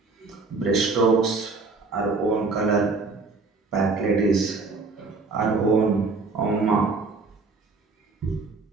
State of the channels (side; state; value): left; quieter; 4.0 dB